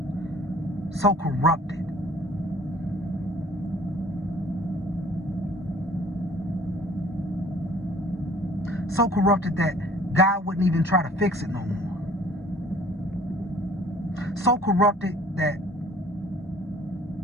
so corrupted, that God wouldn't even try to fix it no more. So corrupted that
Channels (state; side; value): normal; both; correlation 0.52